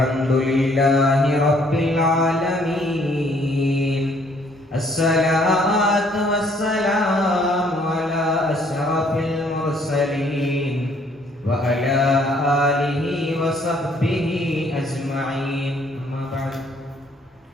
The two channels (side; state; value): both; normal; correlation 0.63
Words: rabbil alamin. Assalatu wassalamu ala asyrafil mursalin wa ala alihi wa sahbihi ajma'in. Amma ba'd.